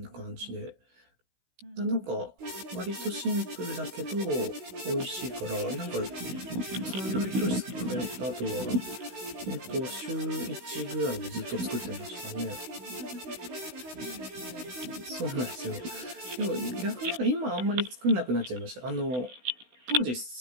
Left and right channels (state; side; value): late; left; 16 ms